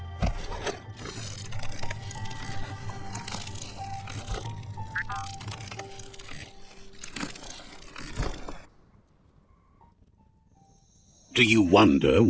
Do you wonder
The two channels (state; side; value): identical; both; correlation 1.00